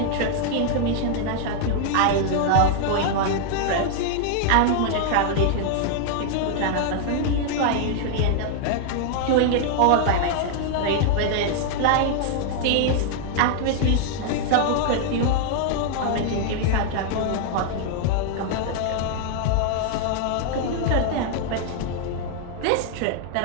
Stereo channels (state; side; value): different; both; correlation 0.00